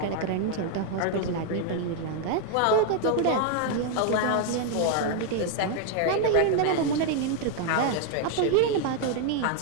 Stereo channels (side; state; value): both; different; correlation 0.00